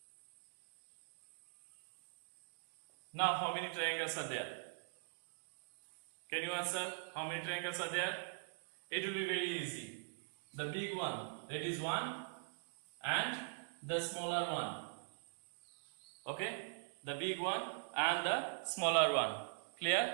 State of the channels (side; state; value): left; silent; digital silence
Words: Now how many triangles are there? Can you answer how many triangles are there? It will be very easy. The big one, that is 1, and the smaller one. Okay? The big one and the smaller one.